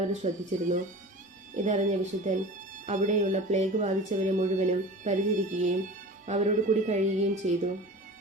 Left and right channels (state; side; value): normal; both; correlation 0.37